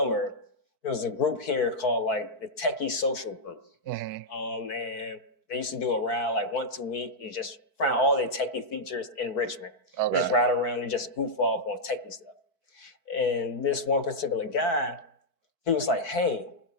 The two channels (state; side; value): late; right; 4.5 ms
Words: there was a group here called like the Techie Social Group. And they used to do a ride like once a week. You just find all the techie features in Richmond. Just ride around and just goof off on techie stuff. And this one particular guy, he was like, hey,